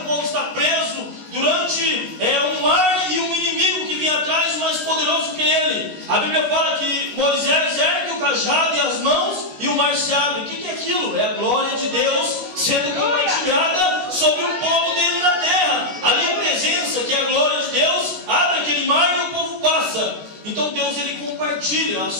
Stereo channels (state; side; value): late; left; 16 ms